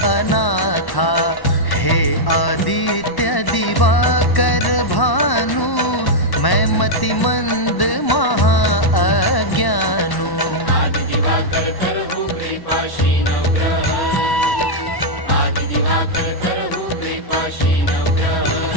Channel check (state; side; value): late; right; 1.1 ms